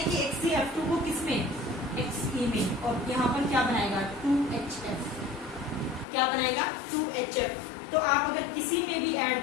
कि HCF2 को किसमें? Xe में, और यहाँ पर क्या बनाएगा? 2HF। क्या बनाएगा? 2HF। तो आप अगर किसी में भी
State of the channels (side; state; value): right; drops out; at 6.1 s